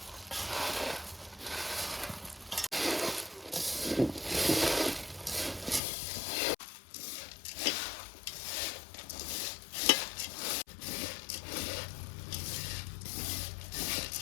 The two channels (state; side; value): drops out; right; at 5.8 s